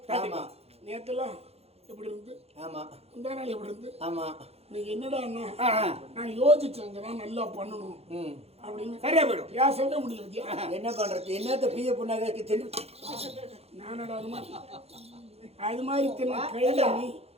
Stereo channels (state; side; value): late; left; 0.29 ms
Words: ஆமா. நேற்றுலாம் எப்படி இருந்து ஆமா. இந்த நாள் எப்படி இருந்து ஆமா. நீங்க என்னடா நான் யோசிச்சேங்கதான் நல்லா பண்ணணும் அப்படின்னு சரியா போயிடும். பேசவே முடியல வித்யா. என்ன பண்றது? என்னத்த பிய புண்ணாக தெரிஞ்சு நானடா அது மாதிரி தின்ன கையில நீ